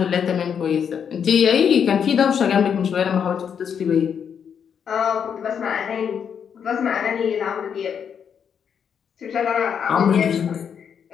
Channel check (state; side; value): quieter; right; 7.6 dB